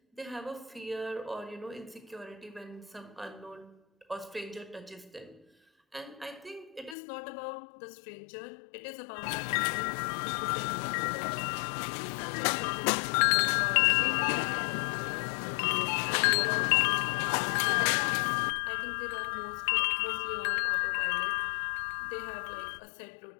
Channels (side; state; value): right; drops out; at 7.0 s